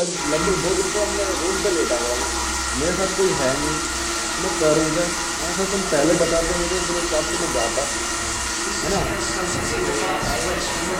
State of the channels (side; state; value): both; identical; correlation 1.00